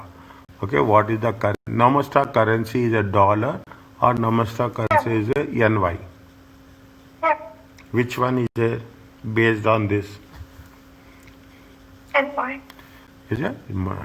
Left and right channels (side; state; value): both; identical; correlation 1.00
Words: Okay, what is the Nostra currency is a dollar, or Nostra currency is a NY. Yeah. Which one is there based on this? NY. Is it?